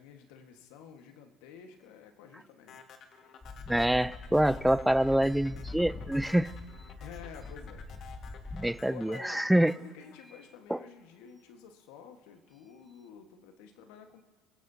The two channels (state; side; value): normal; both; correlation 0.98